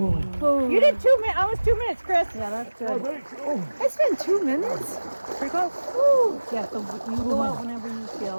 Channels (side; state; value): both; inverted; correlation -1.00